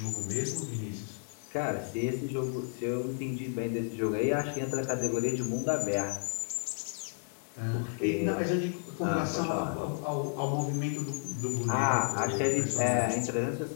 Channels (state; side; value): silent; right; digital silence